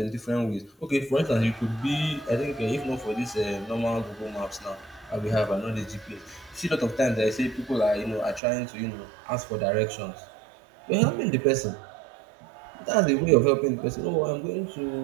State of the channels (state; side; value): drops out; left; at 8.4 s